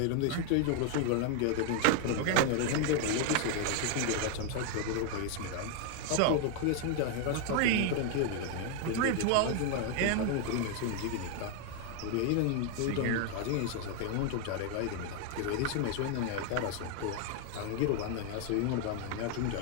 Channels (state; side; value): different; both; correlation 0.00